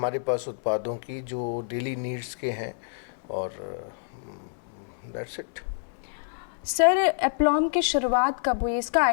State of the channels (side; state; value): right; silent; digital silence